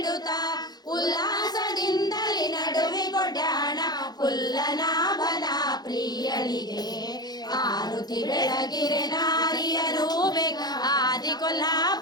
ಉಲ್ಲಾಸದಿಂದಲಿ ನಡುವೆ ಕೊಡ್ಯಾಣ ಪುಲ್ಲನಾಭನ ಪ್ರಿಯಳಿಗೆ ಆರುತಿ ಬೆಳಗಿರೆ ನಾರಿಯರು ಬೇಗ ಆದಿ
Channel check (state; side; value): late; right; 0.19 ms